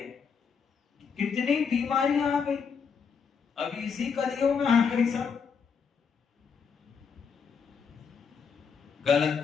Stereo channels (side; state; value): right; quieter; 6.2 dB